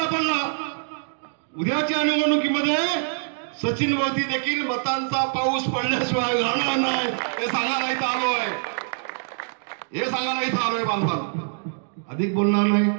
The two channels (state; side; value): silent; left; digital silence